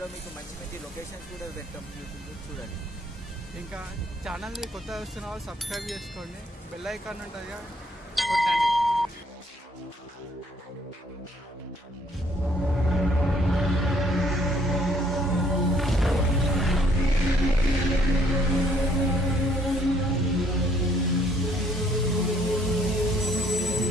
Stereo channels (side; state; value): both; normal; correlation 0.65